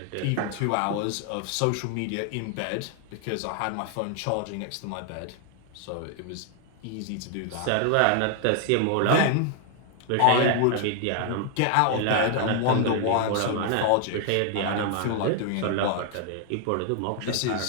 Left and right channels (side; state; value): both; different; correlation 0.00